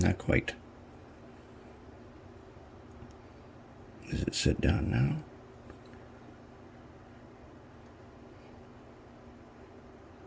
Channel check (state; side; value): identical; both; correlation 1.00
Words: quite. Does it sit down now?